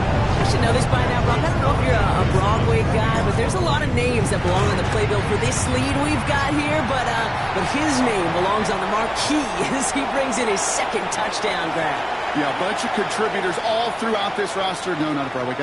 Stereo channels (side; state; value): both; identical; correlation 1.00